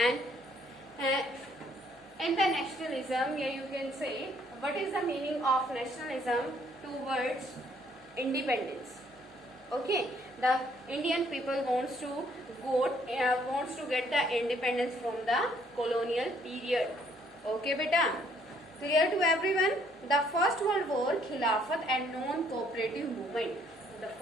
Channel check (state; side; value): normal; both; correlation 0.65